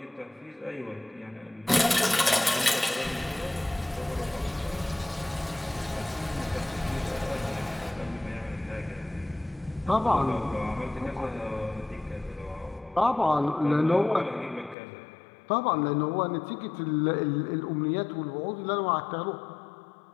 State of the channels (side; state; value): right; drops out; at 14.8 s